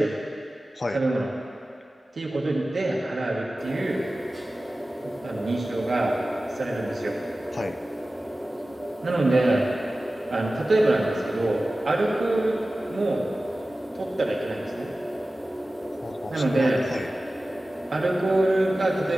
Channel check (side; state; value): both; normal; correlation 0.96